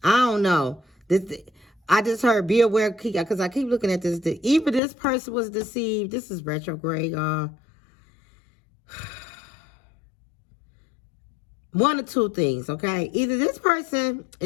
I don't know. I just heard be aware, because I keep looking at this. Even this person was deceived. This is retrograde. One of two things, okay? Either this person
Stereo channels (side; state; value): right; drops out; at 4.8 s